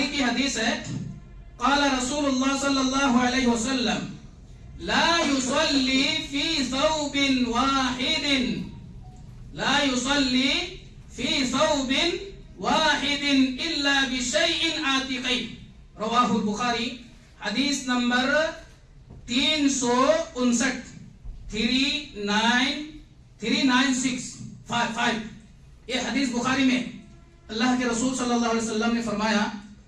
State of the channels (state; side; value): identical; both; correlation 1.00